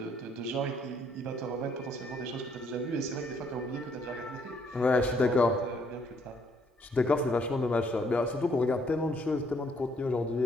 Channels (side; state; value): both; normal; correlation 0.68